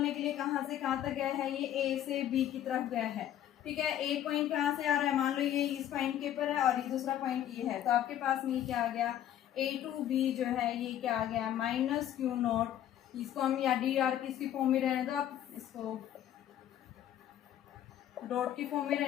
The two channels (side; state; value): right; quieter; 11.3 dB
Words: के लिए, कहाँ से कहाँ तक गया है, ये ए से बी की तरफ गया है, ठीक है। ए पॉइंट कहाँ से आ रहा है, मान लो ये इस पॉइंट के ऊपर है और ये दूसरा पॉइंट ये है। तो आपके पास में ये क्या आ गया, ए टू बी जो है ये क्या आ गया, माइनस क्यू नोट, इसको हम या डी आर की इसकी फॉर्म में रहने दो, आप इसको डॉट की फॉर्म में